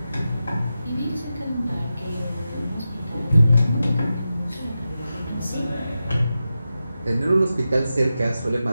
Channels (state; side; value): inverted; both; correlation -0.91